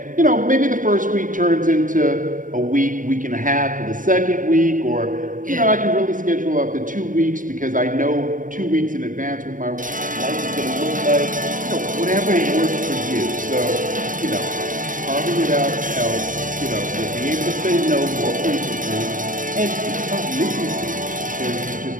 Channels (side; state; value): left; late; 0.38 ms